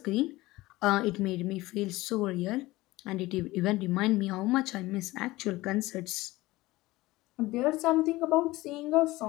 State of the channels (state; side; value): quieter; right; 19.1 dB